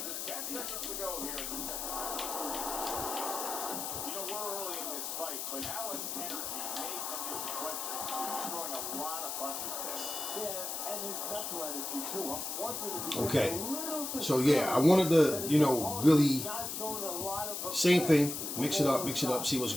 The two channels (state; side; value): noise; left; hiss, 4 dB below the sound